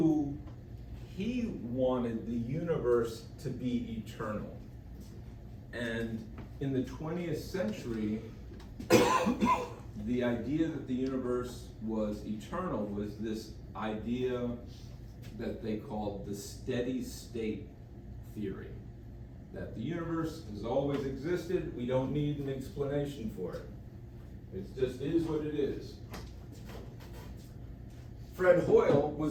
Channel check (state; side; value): identical; both; correlation 1.00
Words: he wanted the universe to be eternal. And in the 20th century, the idea that the universe was eternal was this idea that they called the steady state theory. That the universe has always existed, we don't need an explanation for it. It just is what it is. Fred Hoyle